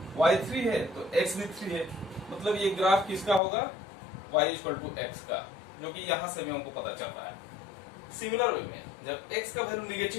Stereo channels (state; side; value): drops out; right; at 3.4 s